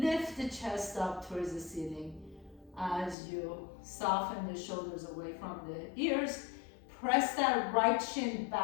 lift the chest up towards the ceiling as you soften the shoulders away from the ears. Press that right shin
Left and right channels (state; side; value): drops out; right; at 3.2 s